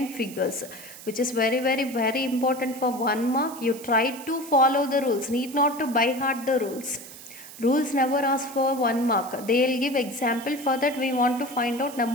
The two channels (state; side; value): noise; right; hiss, 16 dB below the sound